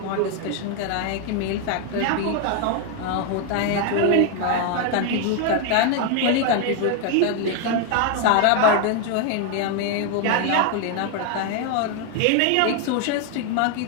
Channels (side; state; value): both; different; correlation 0.01